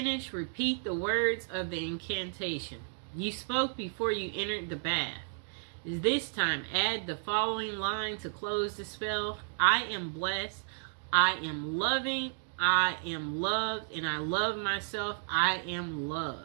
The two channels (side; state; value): left; silent; digital silence